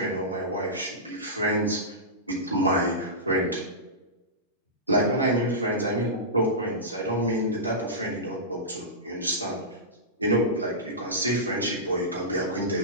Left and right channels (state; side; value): normal; both; correlation -0.17